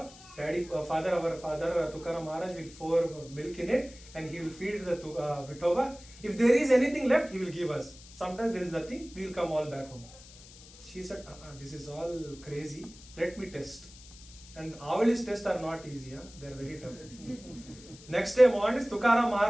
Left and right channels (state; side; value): noise; left; hiss, 20 dB below the sound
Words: Our father Tukaram Maharaj will pour milk in it and he will feed the Vithoba. If there is anything left, he will give us. Sometimes there is nothing, we will come all back home. She said, this is all crazy, let me test. And Avali's tests are not easy, they are very tough. Next day morning, Tukaram